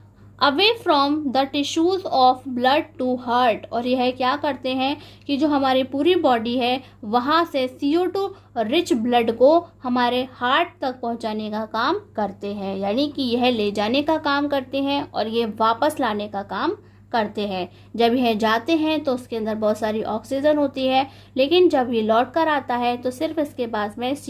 Away from the tissues of blood to heart, और यह क्या करते हैं कि जो हमारी पूरी बॉडी है वहाँ से CO2 रिच ब्लड को हमारे हार्ट तक पहुँचाने का काम करते हैं, यानी कि यह ले जाने का काम करते हैं और ये वापस लाने का काम करते हैं। जब यह जाते हैं तो उसके अंदर बहुत सारी ऑक्सीजन होती है, लेकिन जब ये लौट कर आता है तो सिर्फ इसके पास में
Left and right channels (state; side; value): identical; both; correlation 1.00